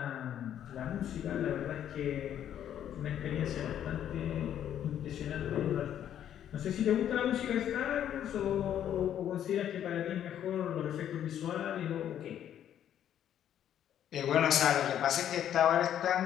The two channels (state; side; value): quieter; right; 10.3 dB